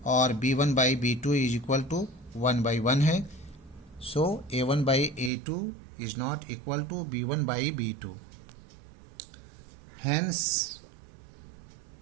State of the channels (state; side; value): drops out; left; at 5.3 s